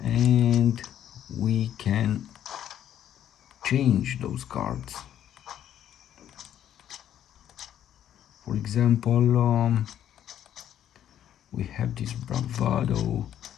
and we can change those cards. For example, we have this bravado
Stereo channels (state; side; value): quieter; right; 10.7 dB